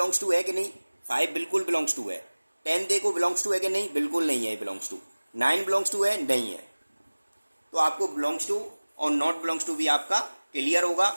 टू है कि नहीं? 5 बिल्कुल बिलोंग्स टू है। 10 देखो बिलोंग्स टू है कि नहीं? बिल्कुल नहीं है बिलोंग्स टू। 9 बिलोंग्स टू है? नहीं है। तो आपको बिलोंग्स टू और नॉट बिलोंग्स टू भी आपका क्लियर होगा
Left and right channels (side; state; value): both; inverted; correlation -1.00